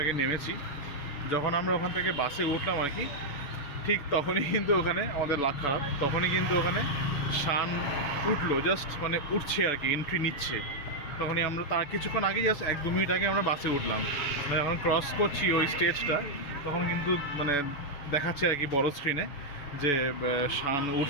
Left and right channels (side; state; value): right; late; 7.0 ms